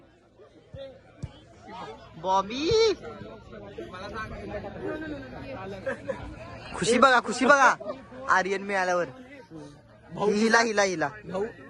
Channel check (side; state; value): both; identical; correlation 1.00